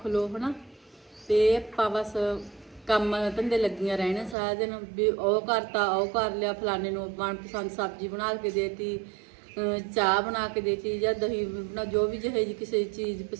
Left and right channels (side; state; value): left; drops out; at 4.4 s